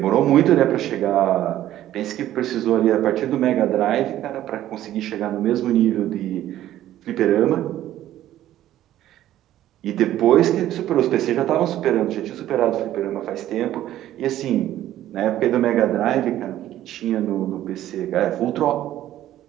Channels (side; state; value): left; quieter; 13.1 dB